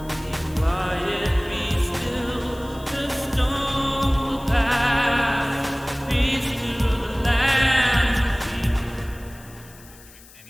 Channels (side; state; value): left; noise; hiss, 22 dB below the sound